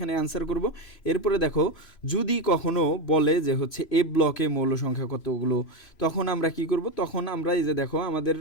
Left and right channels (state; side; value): late; right; 3.0 ms